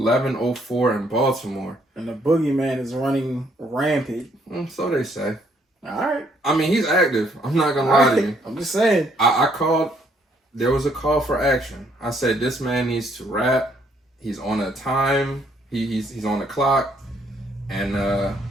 in Baltimore, and the boogeyman is running rampant. So they say. All right. I mean, he's active. I'm not gonna lie to you. I'm just saying. I called. There was a call for action. I said this man needs to rap. He's on a time. He's on the clock, and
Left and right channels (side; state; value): both; normal; correlation 0.68